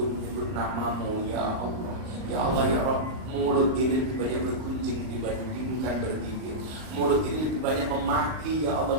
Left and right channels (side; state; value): left; late; 38 ms